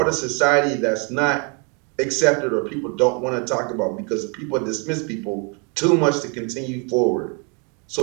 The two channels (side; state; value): left; quieter; 35.7 dB